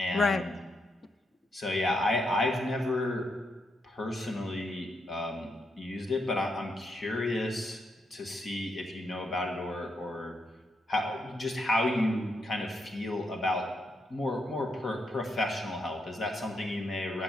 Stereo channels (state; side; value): normal; both; correlation 0.80